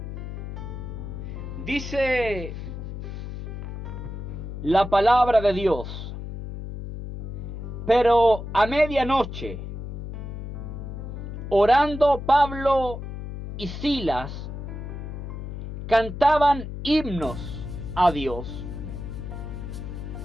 Dice la palabra de Dios: pero a medianoche, orando Pablo y Silas, cantaban himnos a Dios,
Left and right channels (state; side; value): noise; left; hum, 8 dB below the sound